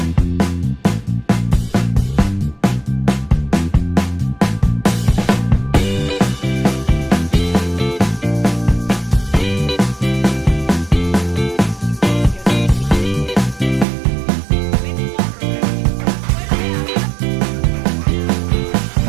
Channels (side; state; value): left; drops out; at 13.9 s